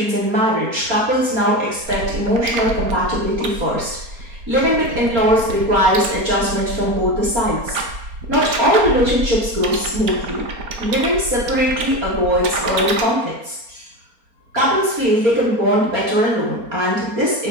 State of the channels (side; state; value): left; late; 4.3 ms